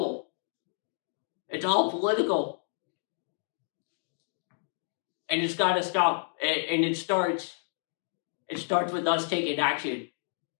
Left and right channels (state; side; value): silent; right; digital silence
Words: It's all political. And it's got to stop. And it starts with us taking action.